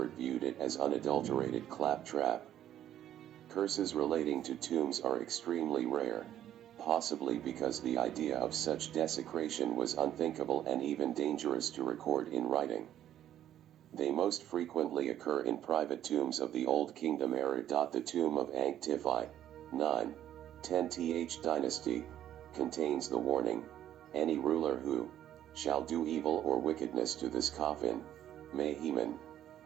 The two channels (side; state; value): left; quieter; 11.4 dB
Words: viewed it as unadulterated claptrap. Curses relating to tombs are extremely rare, possibly because the idea of such desecration was unthinkable and even dangerous to record in writing. They most frequently occur in private tombs of the Old Kingdom era. The tomb of Ankh-Tifi, 9-10th dynasty, contains the warning, "Any ruler who shall do evil or wickedness to this coffin, may Heman,